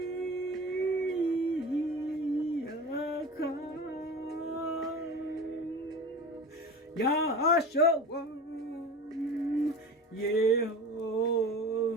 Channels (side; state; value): both; normal; correlation 0.34